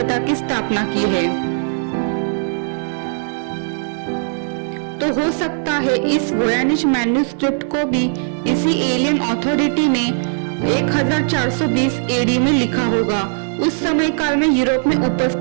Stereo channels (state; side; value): silent; left; digital silence